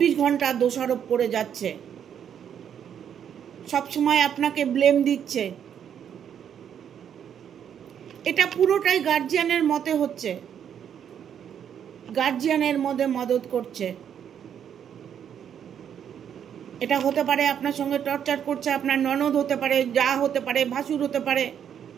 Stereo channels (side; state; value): left; quieter; 8.7 dB